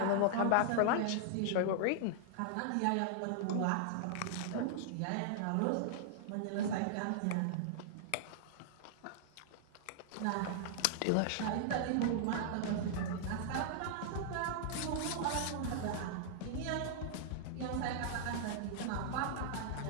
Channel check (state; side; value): different; both; correlation -0.01